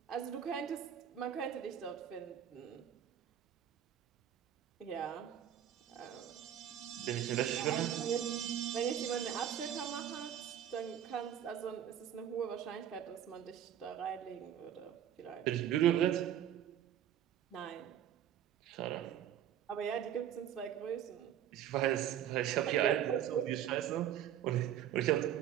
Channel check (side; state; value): left; quieter; 10.4 dB